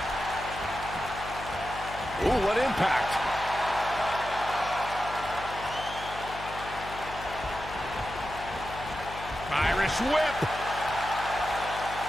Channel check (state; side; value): noise; left; hum, 12 dB below the sound